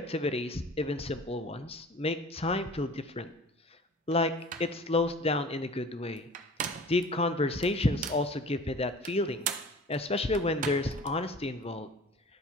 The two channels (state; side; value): normal; both; correlation 0.43